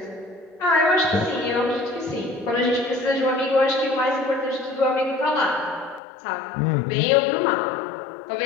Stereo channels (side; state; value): right; drops out; at 6.0 s